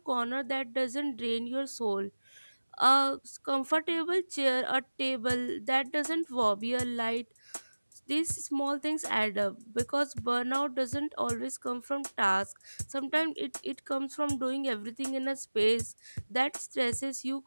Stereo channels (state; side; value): inverted; both; correlation -1.00